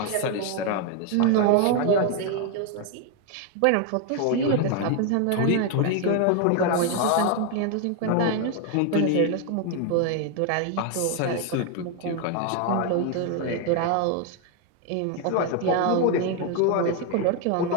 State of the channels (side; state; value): both; different; correlation 0.01